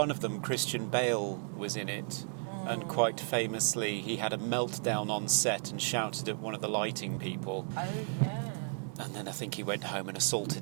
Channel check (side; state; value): left; silent; 55 dB below the other